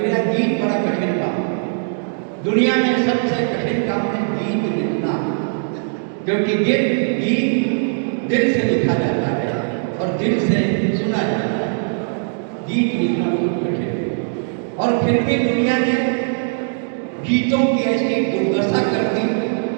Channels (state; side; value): silent; left; 66 dB below the other